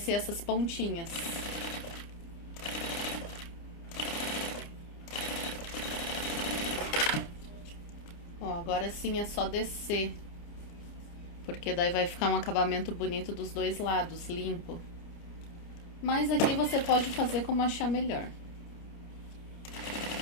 essas pontinhas. Ó, agora sim é só descer, porque daí vai ficar um acabamento bonito dos dois lados, limpo. Mas aqui você pode fazer como achar melhor.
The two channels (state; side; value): late; right; 29 ms